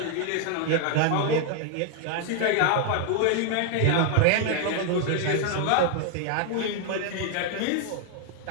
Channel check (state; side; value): different; both; correlation 0.00